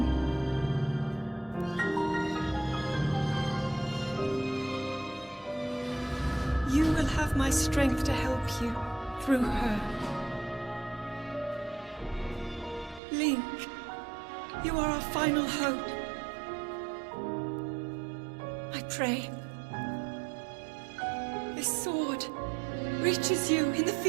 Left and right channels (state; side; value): drops out; left; at 13.0 s